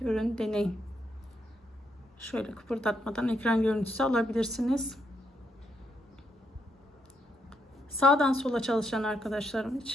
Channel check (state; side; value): normal; both; correlation 0.77